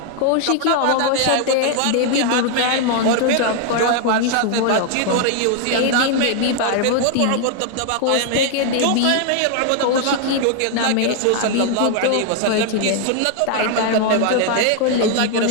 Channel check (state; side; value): different; both; correlation 0.00